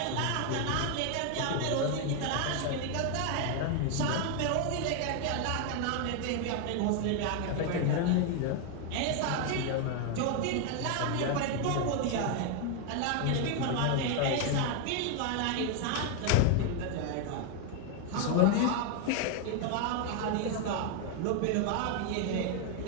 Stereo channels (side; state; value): both; different; correlation 0.01